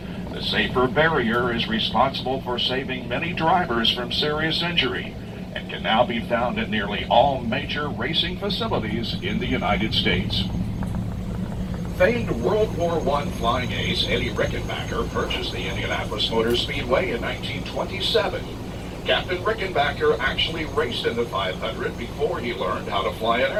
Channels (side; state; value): both; identical; correlation 1.00